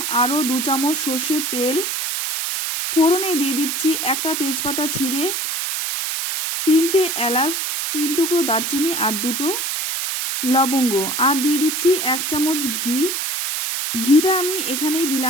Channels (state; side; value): noise; right; hiss, 2 dB below the sound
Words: আরও 2 চামচ সর্ষের তেল। ফোড়নে দিয়ে দিচ্ছি একটা তেজপাতা ছিঁড়ে, 3টে এলাচ, 3 টুকরো দারচিনি আর 2টো লবঙ্গ, আর দিয়ে দিচ্ছি 1 চামচ ঘি। ঘিটা আমি এখানেই